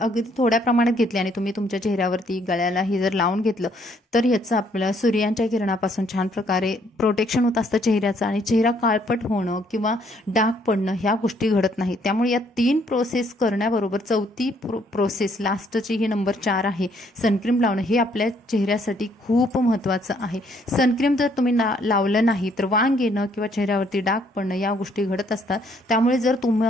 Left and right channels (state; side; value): normal; both; correlation 0.67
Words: थोड्या प्रमाणात घेतली आणि तुम्ही तुमच्या चेहऱ्यावरती गळ्याला हे जर लावून घेतलं तर याचं आपल्या सूर्यांच्या किरणापासून छान प्रकारे प्रोटेक्शन होत असतं चेहऱ्याचं, आणि चेहरा काळपट होणं किंवा डाग पडणं ह्या गोष्टी घडत नाहीत. त्यामुळे या 3 प्रोसेस करण्याबरोबर 4थी प्रोसेस लास्टची ही नंबर 4 आहे सनक्रीम लावणं, हे आपल्या चेहऱ्यासाठी खूप महत्त्वाचं आहे. सनक्रीम जर तुम्ही लावलं नाही तर वांग येणं किंवा चेहऱ्यावरती डाग पडणं या गोष्टी घडत असतात. त्यामुळे जर